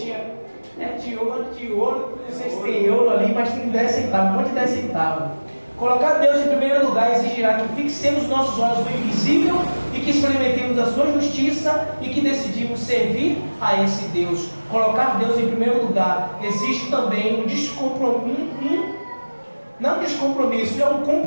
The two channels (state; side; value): inverted; both; correlation -1.00